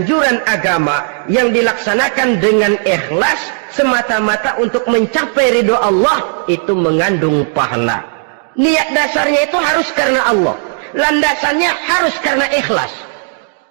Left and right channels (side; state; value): left; silent; digital silence